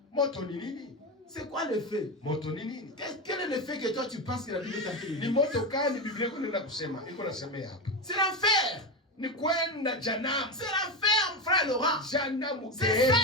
C'est quoi le feu? Quel est le feu que toi tu penses que la Bible t'a dit? C'est l'enfer. C'est l'enfer, mon frère Laurent. C'est ça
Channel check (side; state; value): both; normal; correlation 0.16